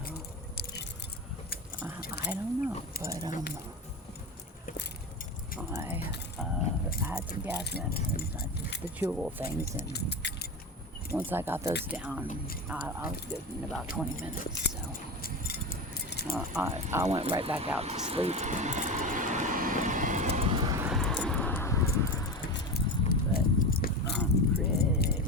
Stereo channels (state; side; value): normal; both; correlation 0.23